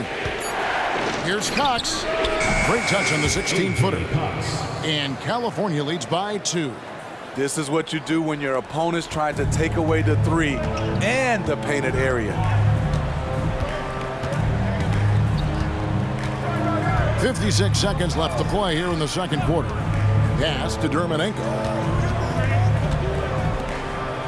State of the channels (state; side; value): identical; both; correlation 1.00